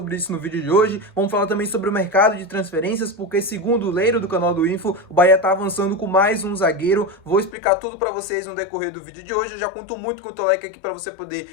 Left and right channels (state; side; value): drops out; right; at 7.6 s